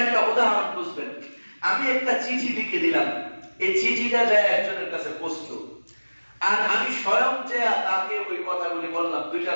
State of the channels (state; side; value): inverted; both; correlation -1.00